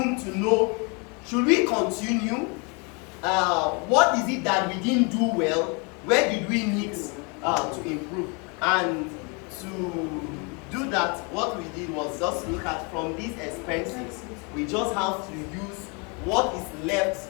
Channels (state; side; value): quieter; right; 32.6 dB